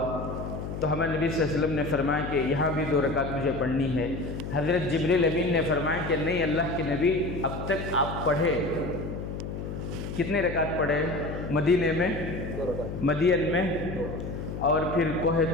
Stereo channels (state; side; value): noise; left; hum, 6 dB below the sound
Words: تو ہمارے نبی صلی اللہ علیہ وسلم نے فرمایا کہ یہاں بھی 2 رکعت مجھے پڑھنی ہے۔ حضرت جبریل امین نے فرمایا کہ نہیں، اللہ کے نبی اب تک آپ پڑھے، کتنے رکعت پڑھے؟ مدینے میں، مدین میں، اور پھر کوہ